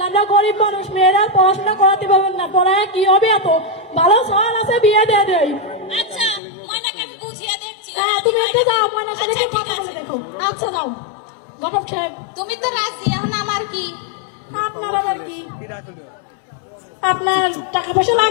আমরা গরিব মানুষ, মেয়েরা পড়াশোনা করাতে পারবেন না। পড়ায় কি হবে? এত ভালো সওয়াল আছে, বিয়ে দিয়ে দেই। আচ্ছা ময়নাকে আমি বুঝিয়ে দিচ্ছি। হ্যাঁ তুমি একটু যাও, ময়নার সাথে আচ্ছা, একটু কথা ঠিক বলে আছে। দেখো। আচ্ছা নাও ঘটক সাহেব। তুমি তো রাজি, এখন আমার কি? আপনার আবার কি? আপনার টাকা পয়সা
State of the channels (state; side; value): drops out; right; at 6.4 s